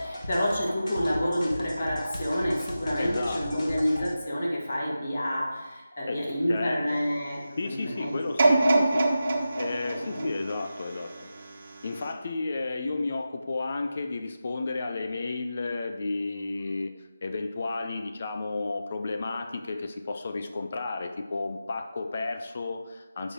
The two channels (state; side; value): inverted; both; correlation -0.92